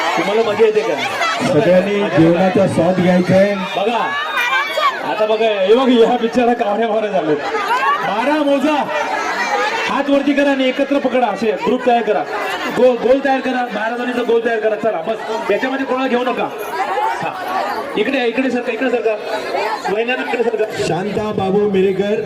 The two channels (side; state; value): both; identical; correlation 1.00